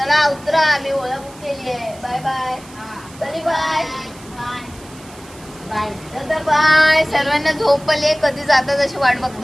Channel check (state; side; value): noise; right; hiss, 21 dB below the sound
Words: उतरा आम्ही ओळख केली आहे. Bye bye. तरी बाय बाय दादा बाय. सर्वांना झोपले कधी जातात अशी वाट